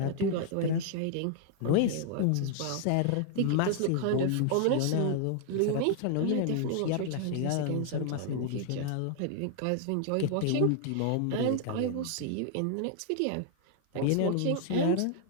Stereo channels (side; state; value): both; different; correlation 0.00